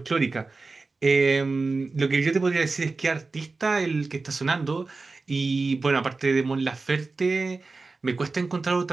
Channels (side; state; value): left; quieter; 3.8 dB